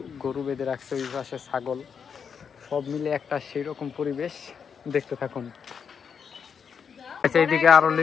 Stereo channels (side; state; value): right; quieter; 6.7 dB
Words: গরু বেঁধে রাখছে, ওই পাশে ছাগল, সব মিলে একটা সেই রকম পরিবেশ। দেখতে থাকুন। আচ্ছা, এইদিকে আরো